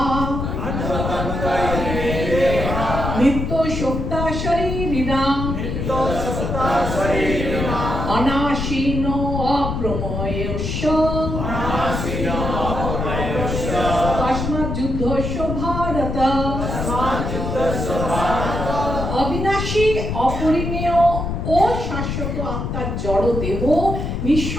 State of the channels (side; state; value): left; noise; rumble, 3 dB below the sound